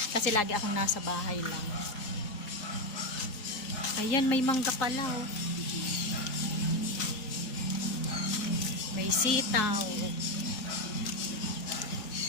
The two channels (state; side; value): late; right; 4.8 ms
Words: Kasi lagi akong nasa bahay lang. Ayan, may mangga pala, oh. May sitaw.